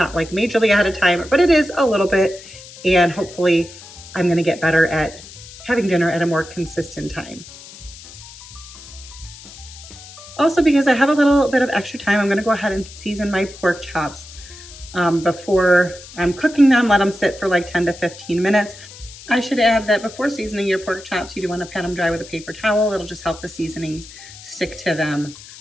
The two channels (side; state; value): left; noise; hiss, 17 dB below the sound